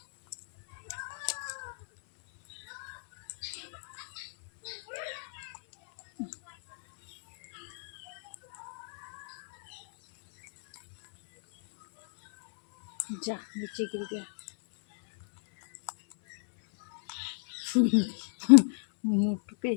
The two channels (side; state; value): right; silent; 57 dB below the other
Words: जा नीचे गिर गया। मोटू पे